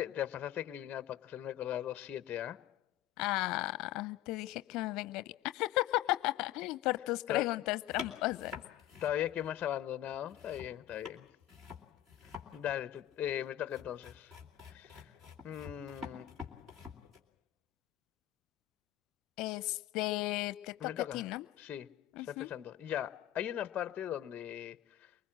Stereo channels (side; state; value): right; quieter; 13.5 dB